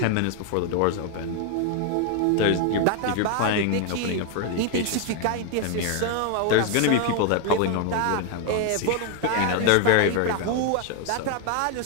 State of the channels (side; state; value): both; different; correlation 0.01